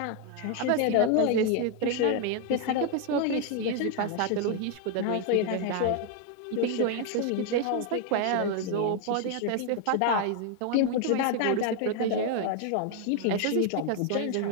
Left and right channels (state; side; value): different; both; correlation 0.00